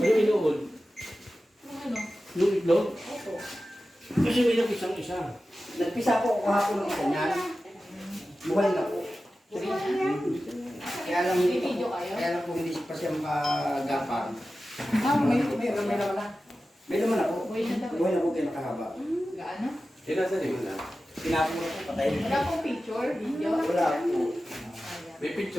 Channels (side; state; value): both; normal; correlation 0.94